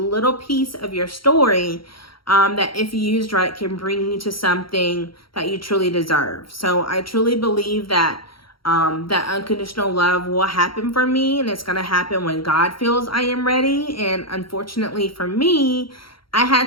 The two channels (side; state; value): right; late; 0.73 ms